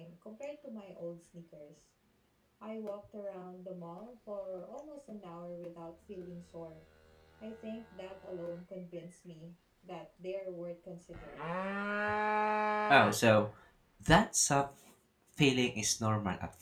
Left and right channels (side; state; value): both; identical; correlation 1.00